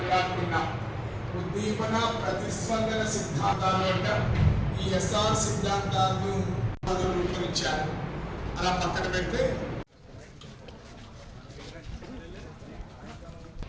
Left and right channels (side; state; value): both; identical; correlation 1.00